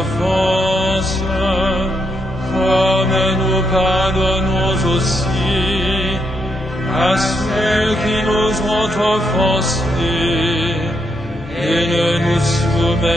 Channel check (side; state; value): both; normal; correlation 0.78